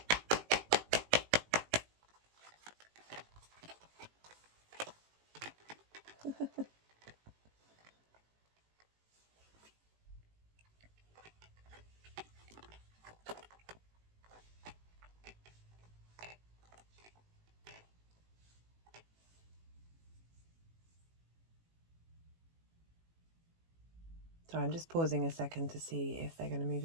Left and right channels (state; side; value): late; left; 18 ms